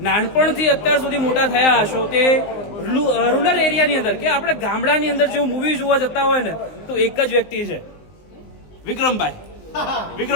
નાનપણથી અત્યાર સુધી મોટા થયા હશો તે રૂરલ એરિયાની અંદર કે આપણે ગામડાની અંદર જેવું મૂવી જોવા જતા હોય ને તો એક જ વ્યક્તિ છે વિક્રમભાઈ.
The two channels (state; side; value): late; right; 19 ms